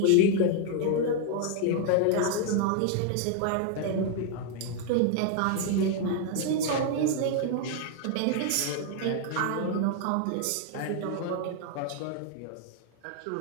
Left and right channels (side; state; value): both; different; correlation 0.00